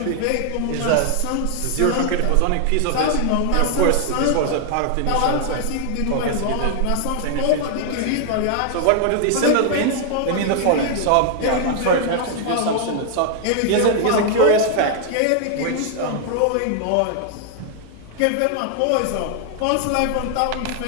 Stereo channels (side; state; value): both; different; correlation 0.00